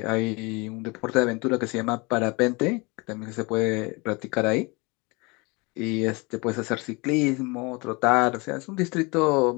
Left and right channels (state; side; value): quieter; right; 27.1 dB